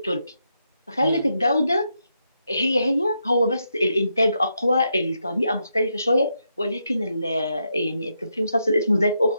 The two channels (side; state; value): both; inverted; correlation -0.82